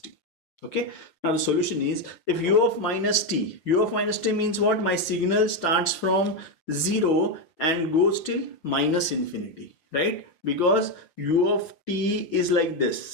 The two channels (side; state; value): right; late; 6.1 ms